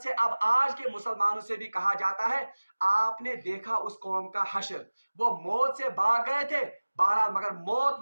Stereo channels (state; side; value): inverted; both; correlation -1.00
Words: से अब आज के मुसलमानों से भी कहा जाता है, आपने देखा उस कौम का हश्र, वो मौत से भाग गए थे बहरहाल, मगर मौत